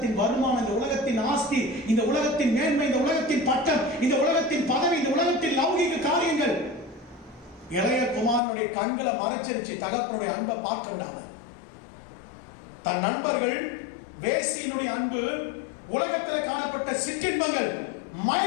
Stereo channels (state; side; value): drops out; right; at 8.4 s